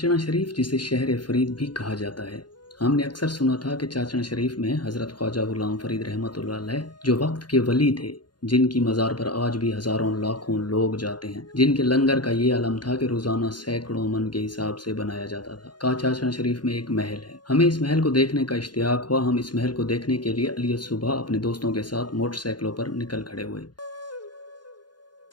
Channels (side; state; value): right; late; 0.70 ms